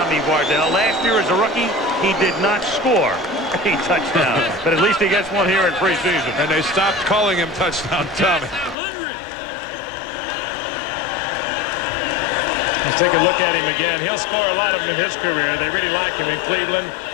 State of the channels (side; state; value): right; drops out; at 8.8 s